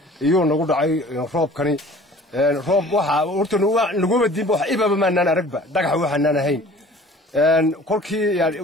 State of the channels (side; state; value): both; normal; correlation 0.47